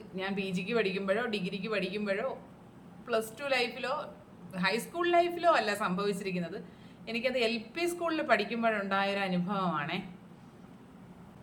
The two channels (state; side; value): identical; both; correlation 1.00